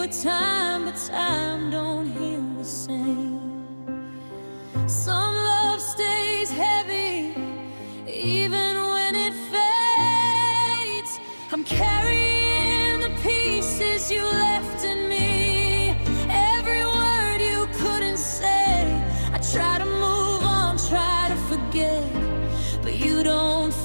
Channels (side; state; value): both; inverted; correlation -1.00